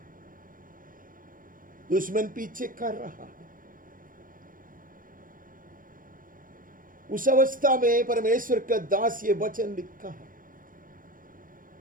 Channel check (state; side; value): late; left; 0.40 ms